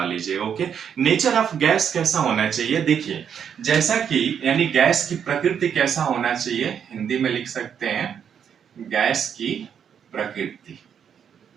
लीजिएगा। ओके, नेचर ऑफ गैस कैसा होना चाहिए, देखिए जैसा कि यानी गैस की प्रकृति कैसा होना चाहिए, हिंदी में लिख सकते हैं गैस की प्रकृति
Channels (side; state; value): left; quieter; 8.0 dB